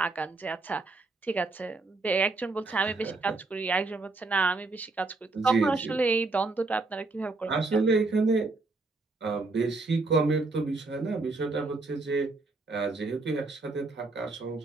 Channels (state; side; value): quieter; left; 3.5 dB